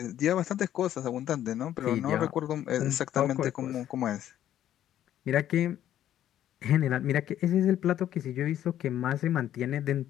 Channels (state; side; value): quieter; right; 11.6 dB